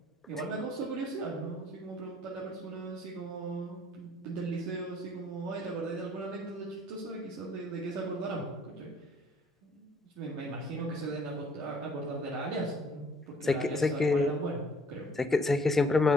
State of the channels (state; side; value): normal; both; correlation 0.60